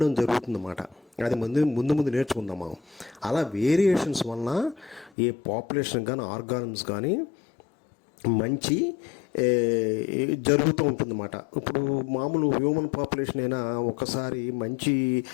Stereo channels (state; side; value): drops out; right; at 5.1 s